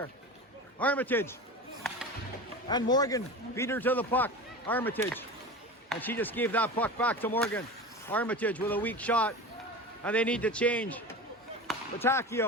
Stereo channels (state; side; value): normal; both; correlation 0.31